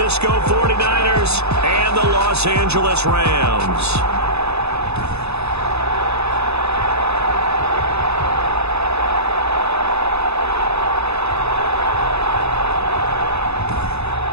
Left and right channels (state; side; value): late; left; 0.79 ms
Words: 49ers and the Los Angeles Rams.